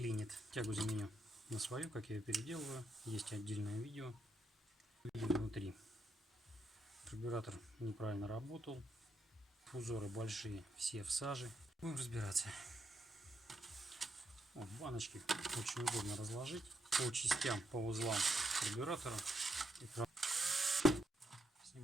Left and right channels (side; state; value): both; normal; correlation 0.78